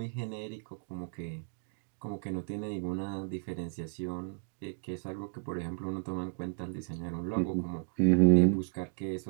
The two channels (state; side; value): silent; left; digital silence